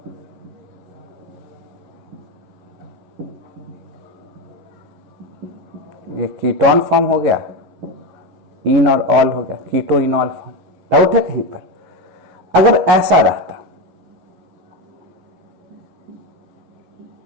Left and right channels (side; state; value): left; late; 11 ms